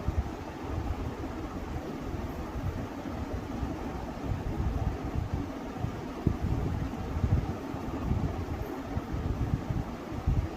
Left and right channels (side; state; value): both; identical; correlation 1.00